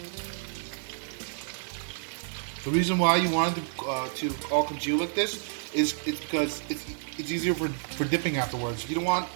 The reason why you wanted to all congeal like this is because it's easier for dipping afterwards. You don't want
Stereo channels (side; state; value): left; silent; 58 dB below the other